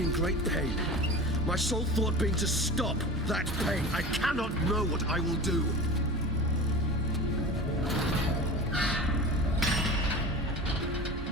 in great pain. My sole thought being to stop that pain. I cannot know what I will do.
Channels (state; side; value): normal; both; correlation 0.32